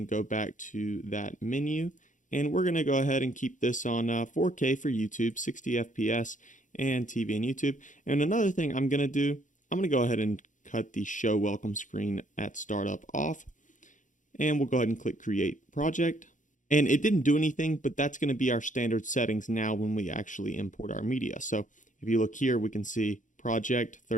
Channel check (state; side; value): late; right; 0.37 ms